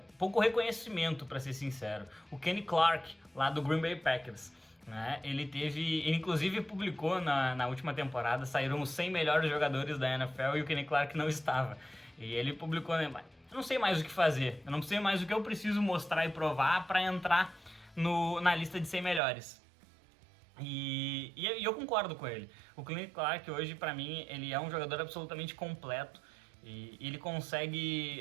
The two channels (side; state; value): left; drops out; at 19.2 s